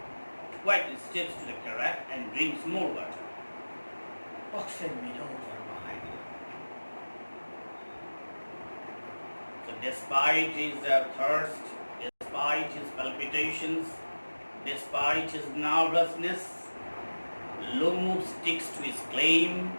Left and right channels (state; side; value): inverted; both; correlation -1.00